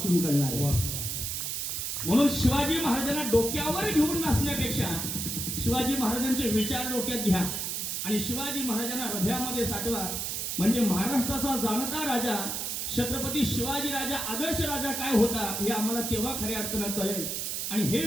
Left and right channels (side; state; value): right; noise; hiss, 2 dB below the sound